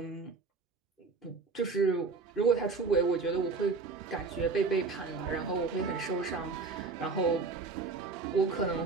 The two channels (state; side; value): quieter; left; 4.4 dB